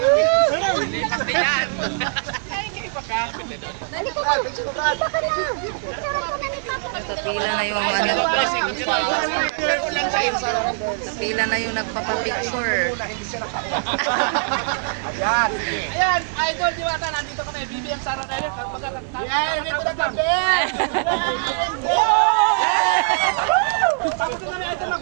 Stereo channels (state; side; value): silent; left; digital silence